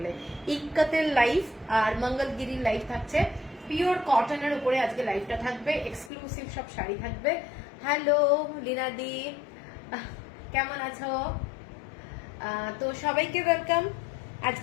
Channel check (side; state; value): right; drops out; at 6.1 s